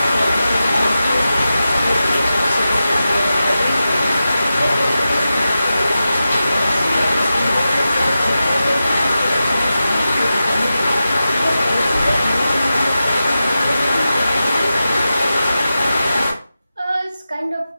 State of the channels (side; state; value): both; inverted; correlation -0.92